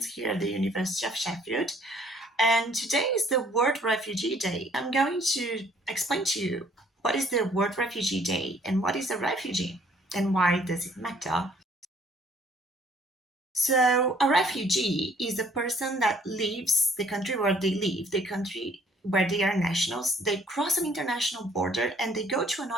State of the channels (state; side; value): normal; both; correlation 0.61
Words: here at the University of Sheffield. And today is the World Refugee Day. I'm going to explain to you what is the World Refugee Day and what is a refugee and why does it matter. So, a refugee is a person that leaves the country where they live, the country where they are nationals. They cross an international border and they go to